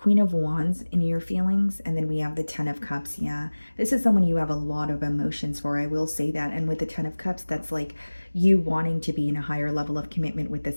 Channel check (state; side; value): inverted; both; correlation -1.00